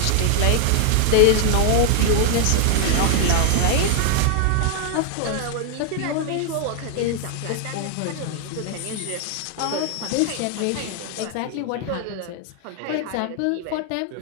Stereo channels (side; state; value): both; different; correlation 0.00